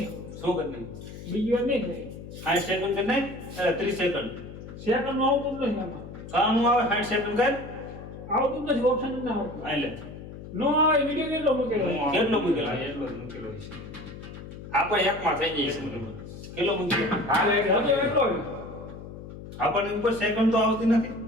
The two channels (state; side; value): noise; left; hum, 13 dB below the sound